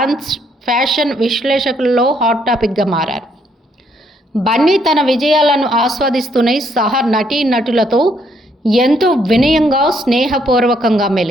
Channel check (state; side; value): normal; both; correlation 0.71